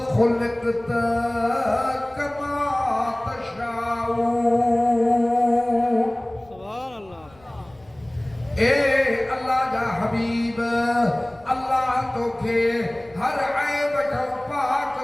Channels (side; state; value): left; noise; rumble, 28 dB below the sound